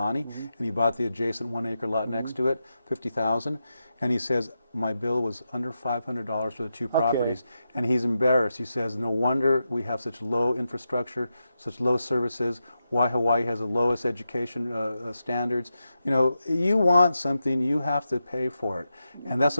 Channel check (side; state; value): both; inverted; correlation -0.88